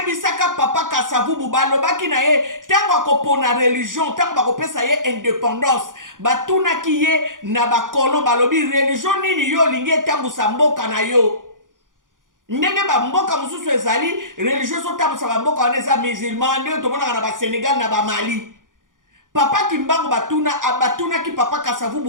papa Kasavubu balobaki na ye tango akopona religion tango bakopesa ye indépendance batunaki ye na bakolo balobi religion nini yo lingi etambusa mboka na yo. Ndenge ba mboka mususu ezali religion so tambusa ba mboka wana eza musulman nde tomonaka na ba Sénégal na ba Mali. Papa Kimbangu batunaki papa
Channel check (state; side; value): late; left; 0.89 ms